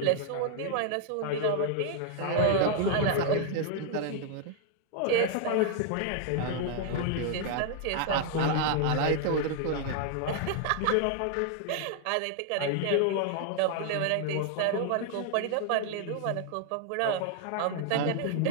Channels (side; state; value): both; different; correlation 0.00